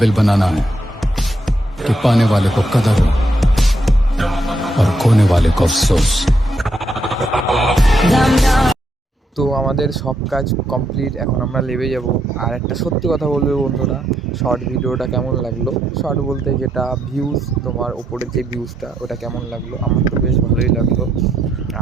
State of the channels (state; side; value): normal; both; correlation 0.77